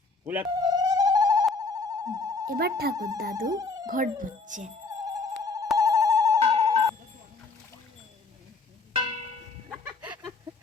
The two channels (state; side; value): quieter; right; 3.9 dB